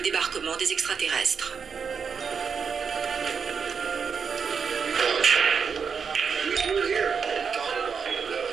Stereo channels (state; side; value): quieter; left; 6.1 dB